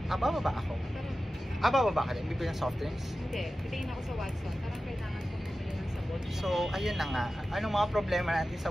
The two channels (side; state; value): both; normal; correlation 0.94